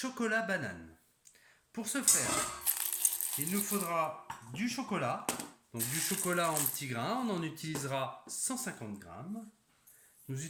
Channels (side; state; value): both; identical; correlation 1.00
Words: banane. Pour ce faire, il nous faudra du chocolat, donc du chocolat en petits grains, on en utilisera 150 grammes. Nous